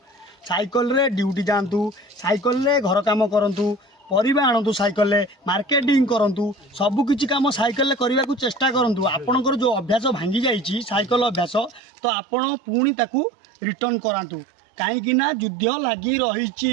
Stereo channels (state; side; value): drops out; left; at 11.8 s